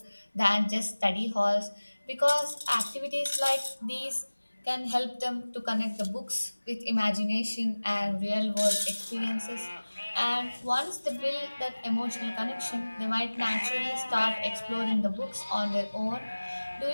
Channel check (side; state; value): both; inverted; correlation -1.00